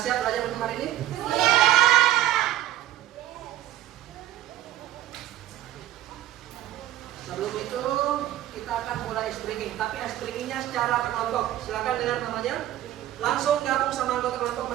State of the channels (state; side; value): quieter; left; 13.7 dB